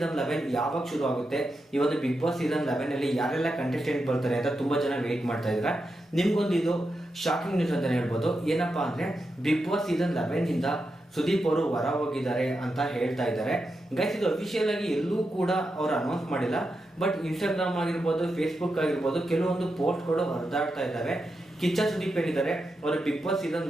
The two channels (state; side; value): normal; both; correlation 0.87